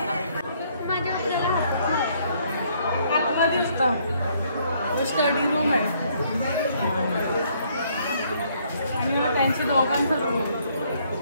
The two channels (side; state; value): both; inverted; correlation -0.67